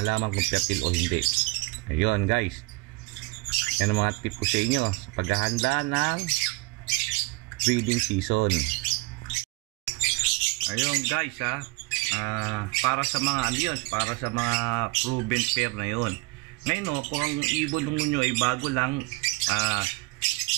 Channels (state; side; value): quieter; left; 26.2 dB